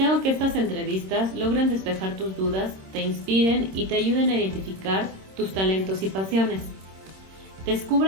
que estas entrevistas logren despejar tus dudas, te inspiren y te ayuden a identificar tus talentos y pasiones.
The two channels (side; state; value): left; late; 26 ms